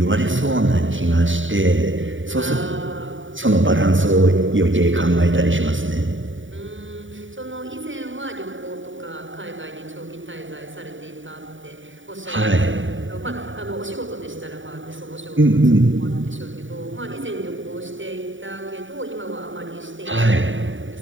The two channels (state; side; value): late; left; 0.56 ms